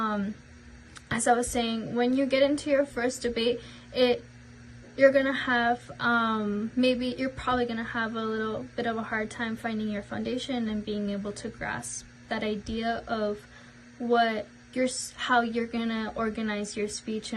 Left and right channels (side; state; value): both; identical; correlation 1.00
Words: as I was saying, when you get into your first debate, you're gonna have you're probably gonna have a little bit of a hard time finding your foundation and being able to grasp that idea of how you're gonna organize your speech